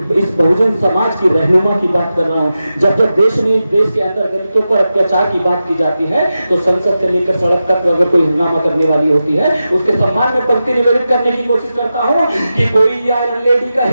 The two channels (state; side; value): inverted; both; correlation -0.91